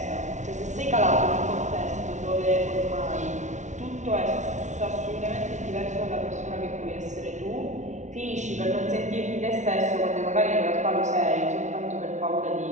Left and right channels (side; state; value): left; late; 0.35 ms